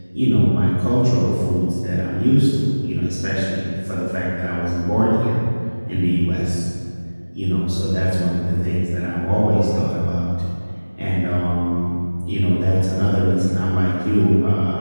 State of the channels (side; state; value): both; inverted; correlation -1.00